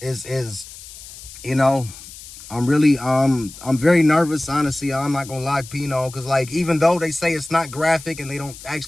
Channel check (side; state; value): left; noise; hiss, 16 dB below the sound